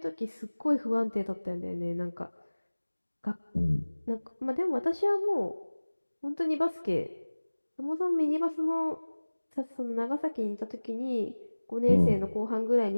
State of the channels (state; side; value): inverted; both; correlation -1.00